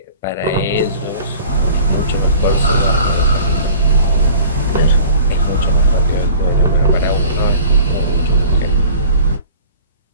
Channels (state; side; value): inverted; both; correlation -0.46